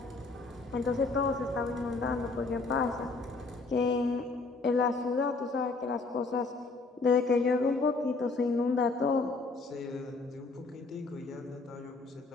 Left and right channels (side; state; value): right; quieter; 3.9 dB